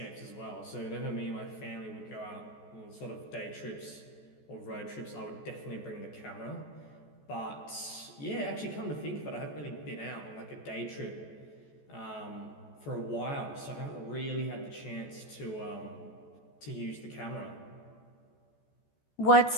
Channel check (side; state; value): right; late; 14 ms